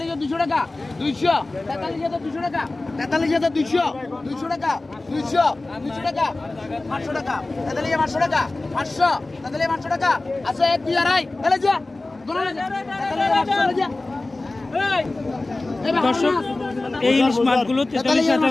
টাকা 200 200 টাকা 200 200 টাকা 200 টাকা 500 টাকা 500 টাকা 500 টাকা আছে 1 2 আড়াই এলে যা দর্শক এই ইলিশ মাছগুলো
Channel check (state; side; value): quieter; right; 3.0 dB